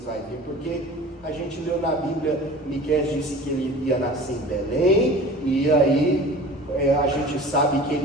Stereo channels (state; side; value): normal; both; correlation 0.41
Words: vai vir, porque a gente leu na Bíblia, Miqueias disse que ele ia nascer em Belém, e aí a gente sabe que